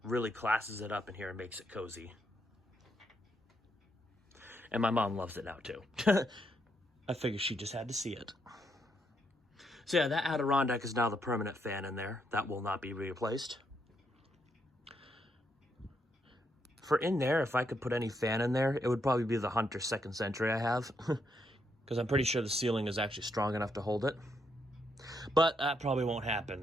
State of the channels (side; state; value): both; normal; correlation 0.77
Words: classes it up in here and makes it cozy. And my mom loves it now too. I figured she just had to see it. So yeah, that Adirondack is now the permanent fan in there. That will not be replaced. For in there, if I could put any fan in there, it would probably be the Hunter 2nd Century I have. Because I'm pretty sure the ceiling is actually strong enough to hold it. But that probably won't happen,